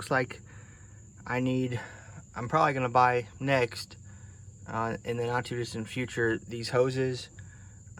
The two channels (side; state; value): both; identical; correlation 1.00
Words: like I'm probably gonna buy next, in the not too distant future, these hoses